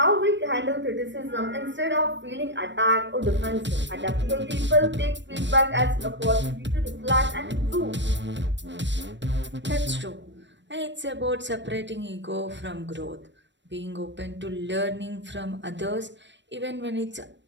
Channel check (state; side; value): late; left; 0.53 ms